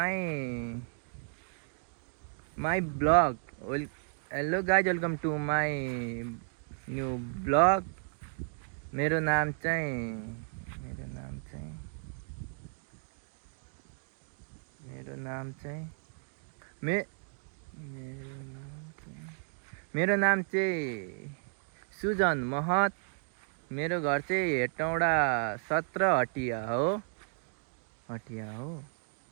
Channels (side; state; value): left; silent; 55 dB below the other